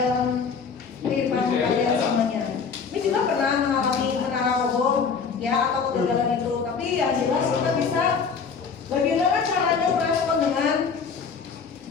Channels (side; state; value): right; quieter; 5.7 dB